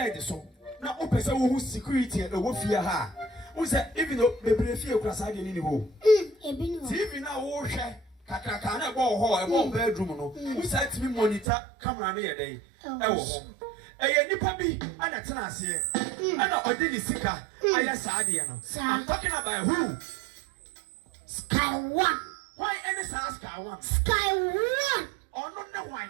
so. Now o person who security e wo fear ha. Who say even though bebre fear kwasa de ni ho. Ebi no. TV na wo hwe kakaka na go ho e wo bedroom no. Who say to me monitor camera na ye dey. E wo ho. Eye nipa bi ana tena ase. Ana odini sika aya saade no. I'm talking about who? Sky One. Why any Sky One? Sky One. Oh no why?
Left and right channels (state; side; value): drops out; left; at 11.5 s